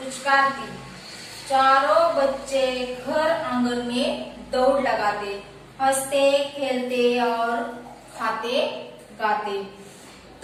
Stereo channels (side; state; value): both; identical; correlation 1.00